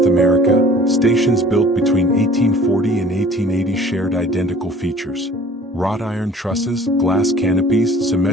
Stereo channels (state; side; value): normal; both; correlation 0.50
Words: America, stations built between 1840 and 1880 shared identical features. Wrought iron trusses, glass canopies,